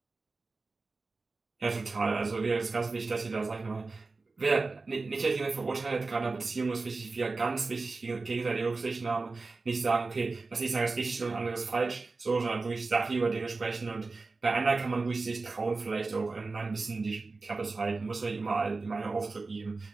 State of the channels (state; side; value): quieter; left; 3.8 dB